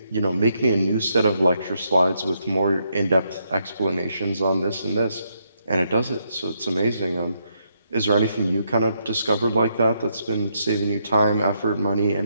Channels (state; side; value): inverted; both; correlation -0.77